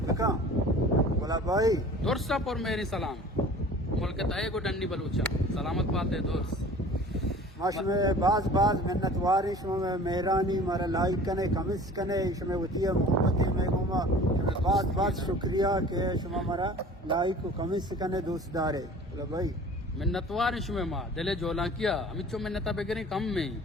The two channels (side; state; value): both; normal; correlation 0.45